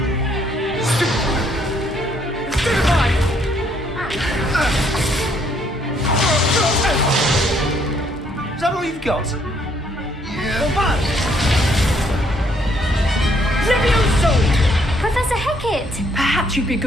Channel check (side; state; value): both; normal; correlation 0.68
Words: Is that all you've got? Yeah. Levioso! Professor Hecat! Perhaps you'd be